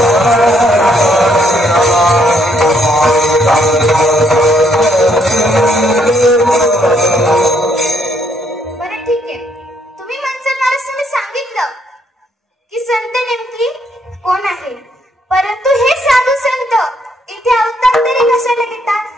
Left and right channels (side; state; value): both; normal; correlation 0.71